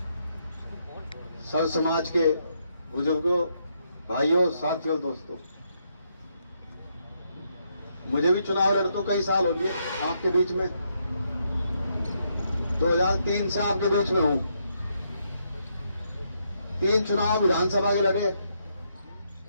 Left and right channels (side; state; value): both; inverted; correlation -0.77